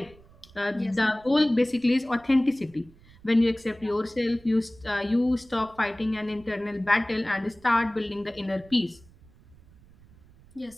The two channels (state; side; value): noise; right; rumble, 26 dB below the sound